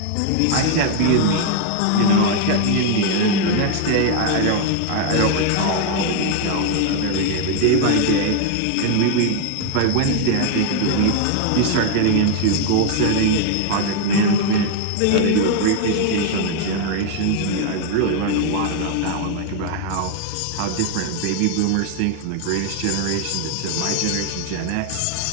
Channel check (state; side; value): different; both; correlation 0.01